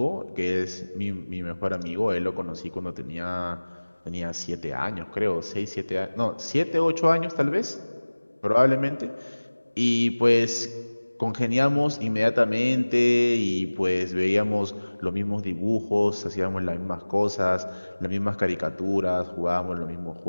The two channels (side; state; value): both; inverted; correlation -1.00